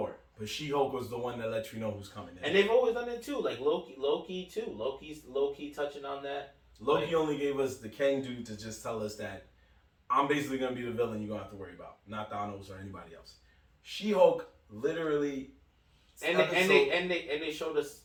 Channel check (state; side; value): identical; both; correlation 1.00